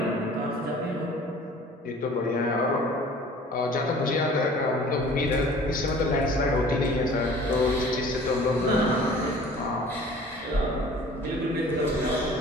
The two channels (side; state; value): both; normal; correlation 0.47